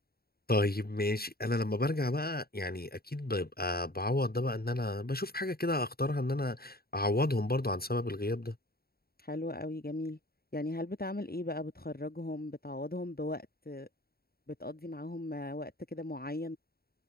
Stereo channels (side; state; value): right; late; 0.45 ms